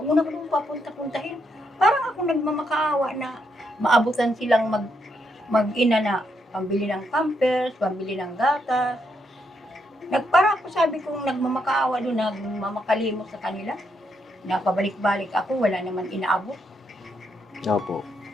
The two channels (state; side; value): normal; both; correlation 0.78